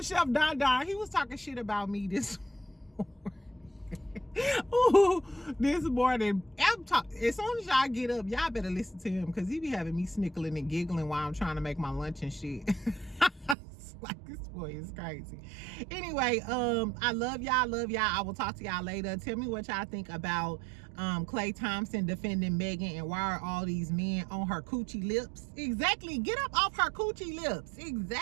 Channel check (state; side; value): drops out; left; at 13.6 s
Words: Chef Don Don. He was talking shit about me this morning. Ooh, this morning, as soon as y'all get up, y'all better listen to him because he be having me snickling and giggling while I'm trying to make my lunch and shit. It's like, this boy is crazy. Anyway, I love y'all. I will talk to y'all later. Tell me what y'all think about Klay Thompson defending Megan, and why are all these men on her coochie lips? Exactly. Get up off her coochie lips.